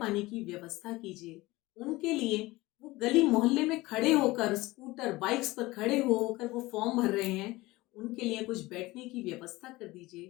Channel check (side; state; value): right; quieter; 20.0 dB